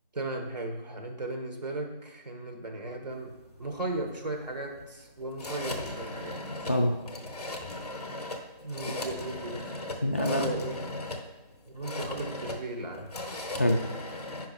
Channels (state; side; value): inverted; both; correlation -0.54